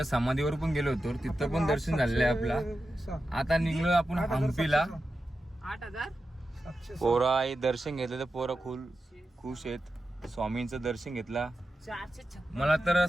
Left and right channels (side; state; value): both; normal; correlation 0.91